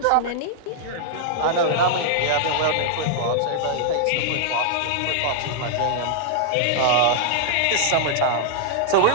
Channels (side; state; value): both; different; correlation -0.01